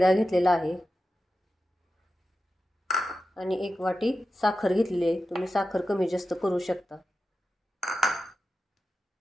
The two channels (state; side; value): normal; both; correlation 0.92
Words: घेतलेला आहे आणि 1 वाटी साखर घेतलेली आहे. तुम्ही साखर कमी जास्त करू शकता.